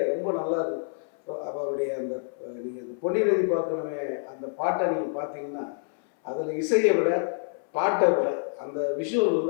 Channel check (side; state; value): right; silent; 60 dB below the other